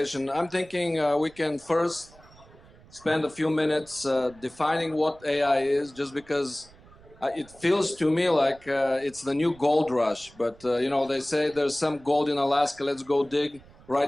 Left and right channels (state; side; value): noise; right; rumble, 24 dB below the sound